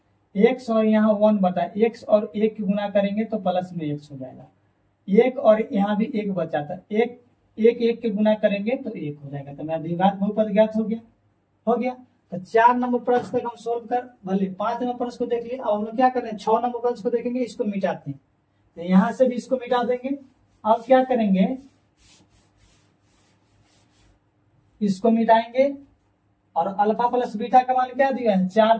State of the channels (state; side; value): identical; both; correlation 1.00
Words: x और यहाँ 1/x और 1 की गुना करेंगे तो प्लस में x हो जाएगा, 1 और यहाँ भी 1 बचा था, 1 के गुना करेंगे तो 1 हो जाएगा। तो मेरा द्विघात बहुपद ज्ञात हो गया। तो 4 नंबर प्रश्न तक हम सोल्व कर भले 5 नंबर प्रश्न को देख लिए। अब हम लोग क्या कर रहे हैं 6 नंबर प्रश्न को देखेंगे, इसको मिटाते हैं, तो यहाँ से भी इसको मिटा देंगे। अब क्या करेंगे इसको मिटाएंगे और अल्फा प्लस बीटा का मान क्या दिया है 4,